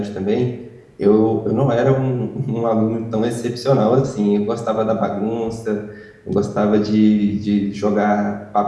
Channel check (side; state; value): both; identical; correlation 1.00